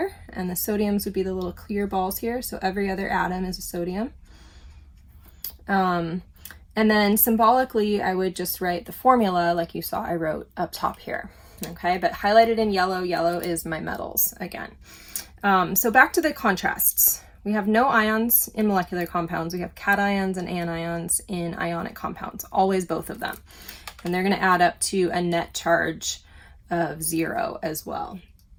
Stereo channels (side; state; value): both; identical; correlation 1.00